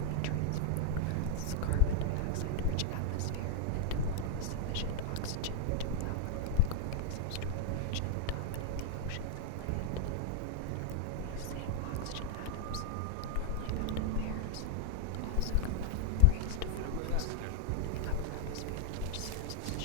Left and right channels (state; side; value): different; both; correlation 0.00